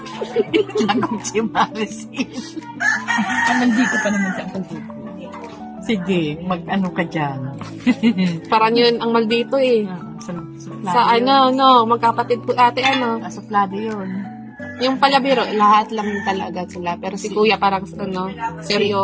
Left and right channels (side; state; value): both; identical; correlation 1.00